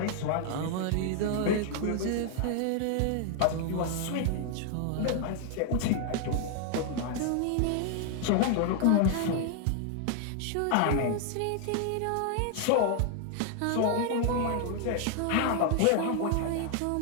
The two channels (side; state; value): both; different; correlation 0.00